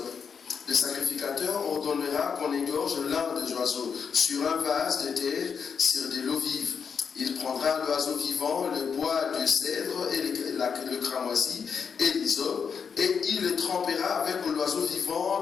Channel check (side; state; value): right; quieter; 6.4 dB